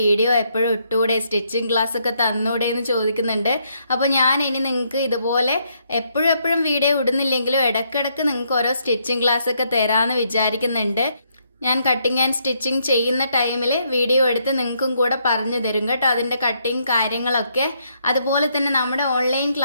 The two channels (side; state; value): both; inverted; correlation -0.74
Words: എപ്പോഴും ഇട്ടൂടെ, സ്റ്റിച്ചിങ് ക്ലാസ് ഒക്കെ തന്നൂടെ എന്ന് ചോദിക്കുന്നുണ്ട്. അപ്പോൾ ഞാൻ ഇനി നിങ്ങൾക്ക് ഇതുപോലെ എപ്പോഴും എപ്പോഴും വീഡിയോ ഇടുന്നില്ലെങ്കിലും ഇടയ്ക്കിടയ്ക്ക് നിങ്ങൾക്ക് ഓരോ സ്റ്റിച്ചിങ് ക്ലാസ് ഒക്കെ തരാമെന്ന് വിചാരിക്കുന്നുണ്ട്. ഞാൻ കട്ടിങ് ആൻഡ് സ്റ്റിച്ചിങ് ചെയ്യുന്ന ടൈമിൽ വീഡിയോ എടുത്ത് നിങ്ങൾക്കും കൂടെ പറഞ്ഞു തരും കേട്ടോ, അതിൻ്റെ കട്ടിങ് കാര്യങ്ങളൊക്കെ. അതുപോലെ തന്നെ നമ്മുടെ ഓൺലൈൻ